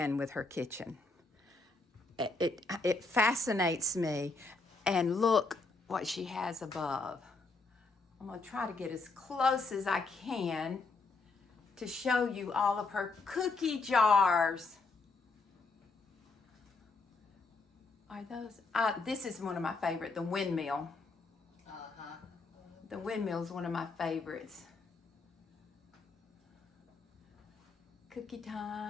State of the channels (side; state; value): right; quieter; 3.7 dB